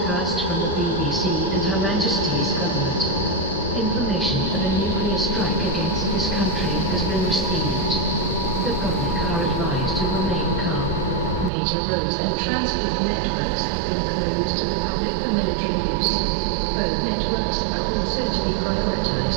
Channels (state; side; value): drops out; left; at 11.5 s